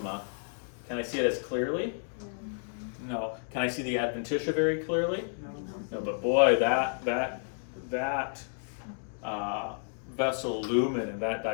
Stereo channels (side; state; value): right; silent; digital silence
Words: Can I see it as clearly? No. Can I see the adventitia very clearly? No, but boy, that vessel lumen and that